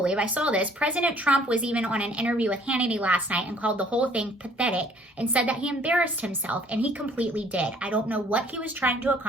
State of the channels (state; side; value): normal; both; correlation 0.58